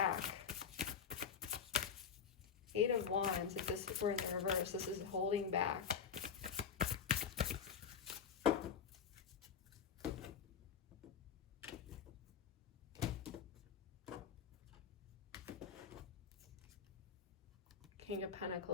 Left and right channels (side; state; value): right; quieter; 6.9 dB